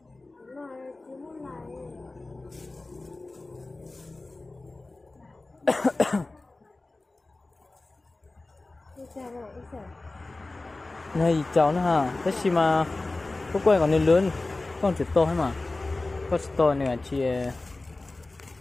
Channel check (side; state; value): right; quieter; 3.1 dB